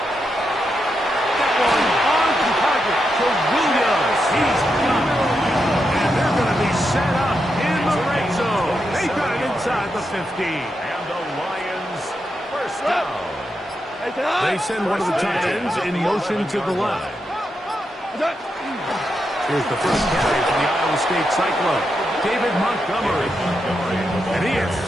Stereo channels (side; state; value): both; normal; correlation 0.85